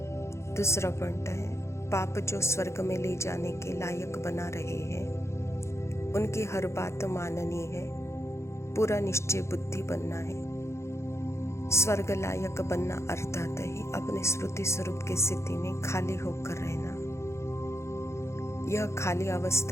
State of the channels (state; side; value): late; right; 0.13 ms